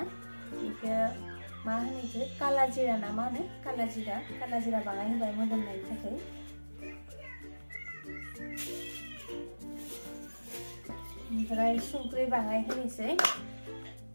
बेखौ मा होनो बेखौ काला जिरा ना मा होनो काला जिरा बाङाय होबाय मोदोमनायनि थाखाय। ओमफ्राय संख्रि बाङाय होनोसै।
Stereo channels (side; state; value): both; inverted; correlation -1.00